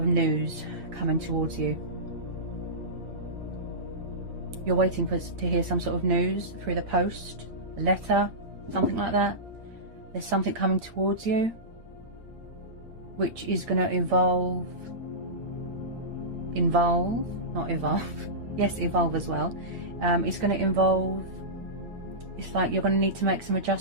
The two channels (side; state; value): left; late; 8.8 ms